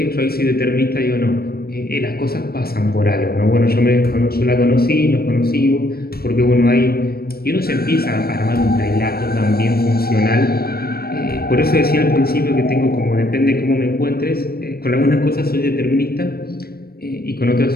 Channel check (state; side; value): late; right; 0.44 ms